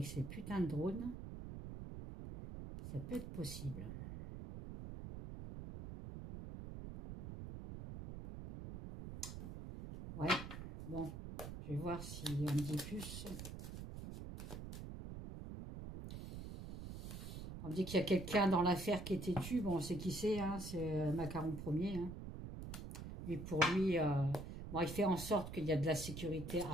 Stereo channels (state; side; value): noise; right; rumble, 9 dB below the sound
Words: ces putains de drones, ça peut être possible. Ouais, bon, je vais voir si on me dit plus. On me dit qu'il y a quelqu'un dans l'affaire qui est têtu. Bon, on sait qui c'est, hein, c'est Macaron Ier. Hein. Lui, pour lui, bon, il fait en sorte qu'il y a de la sécurité